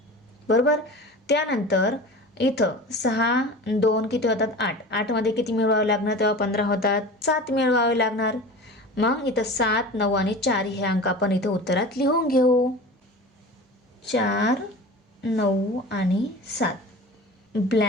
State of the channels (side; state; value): both; normal; correlation 0.36